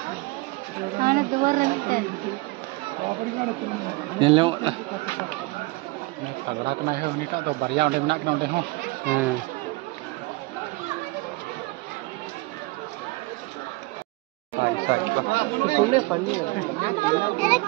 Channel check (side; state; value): left; quieter; 23.6 dB